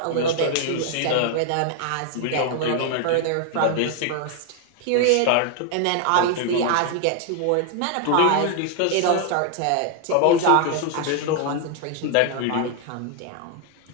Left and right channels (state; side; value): different; both; correlation 0.00